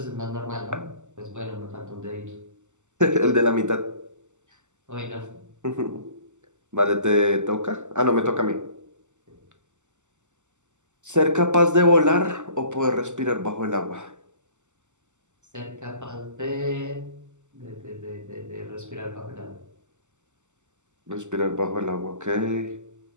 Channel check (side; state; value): left; late; 0.84 ms